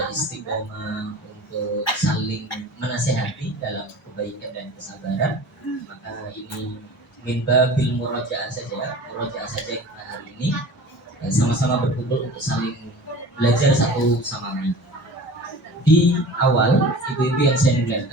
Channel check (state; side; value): normal; both; correlation 0.39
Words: istiqomah untuk saling menasehati dalam kebaikan dan kesabaran. Maka ini min babil murojaah saja kita hari ini sama-sama berkumpul untuk saling belajar satu sama lain. Di awal, ibu-ibu yang saya